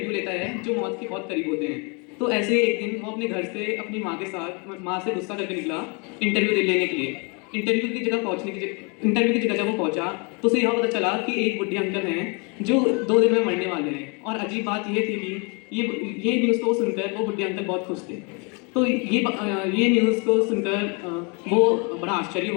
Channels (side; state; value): right; quieter; 32.5 dB